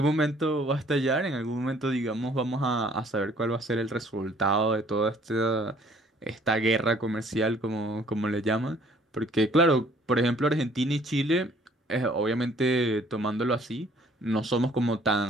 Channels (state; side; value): normal; both; correlation 0.58